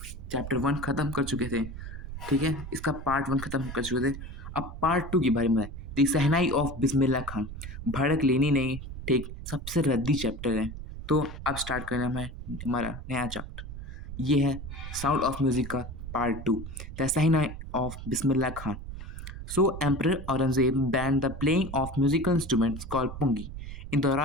चैप्टर 1 ख़त्म कर चुके थे, ठीक है, इसका पार्ट 1 ख़त्म कर चुके थे। अब पार्ट 2 के बारे में दी सहनाई ऑफ बिस्मिल्लाह खान। भड़क लेनी नहीं, ठीक, सबसे रद्दी चैप्टर है। तो अब स्टार्ट करना है हमारा नया चैप्टर। ये है साउंड ऑफ म्यूज़िक का part 2, the shehnai of Bismillah Khan. So Emperor Aurangzeb banned the playing of musical instruments called pungi in the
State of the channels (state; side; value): noise; right; rumble, 10 dB below the sound